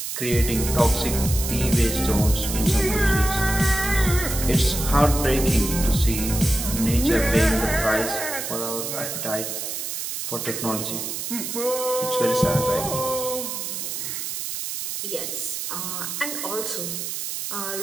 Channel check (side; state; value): right; noise; hiss, 5 dB below the sound